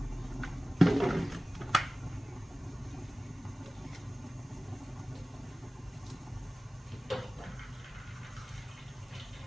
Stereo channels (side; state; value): both; normal; correlation 0.97